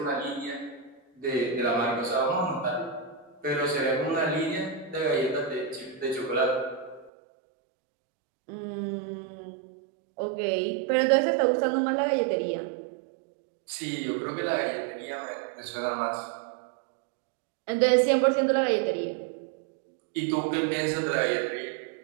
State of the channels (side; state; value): left; drops out; at 7.1 s